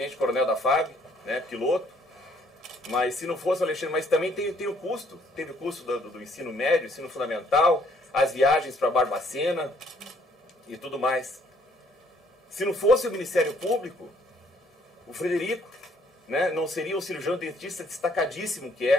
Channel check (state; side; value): normal; both; correlation 0.65